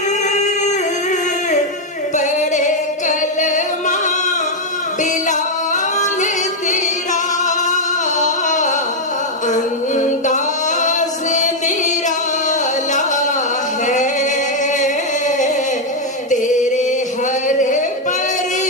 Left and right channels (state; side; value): normal; both; correlation 0.01